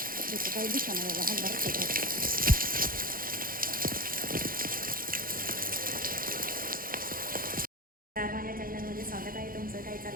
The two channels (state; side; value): late; left; 0.41 ms